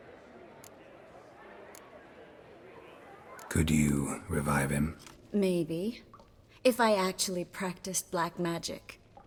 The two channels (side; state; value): both; identical; correlation 1.00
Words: Could you revive him? Maybe. If I actually practiced black magic.